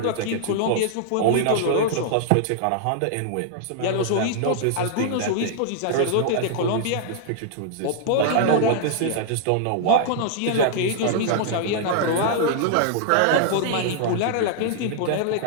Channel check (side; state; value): both; different; correlation -0.01